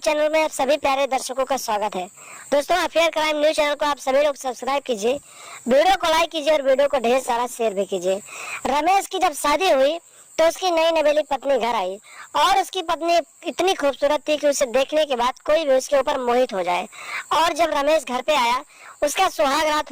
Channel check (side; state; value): both; identical; correlation 1.00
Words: में आप सभी प्यारे दर्शकों का स्वागत है। दोस्तों, अफेयर क्राइम न्यूज चैनल को आप सभी लोग सब्सक्राइब कीजिए, वीडियो को लाइक कीजिए और वीडियो को ढेर सारा शेयर भी कीजिए। रमेश की जब शादी हुई तो उसकी नई नवेली पत्नी घर आई और उसकी पत्नी इतनी खूबसूरत थी कि उसे देखने के बाद कोई भी उसके ऊपर मोहित हो जाए। और जब रमेश घर पे आया, उसका सुहाग रात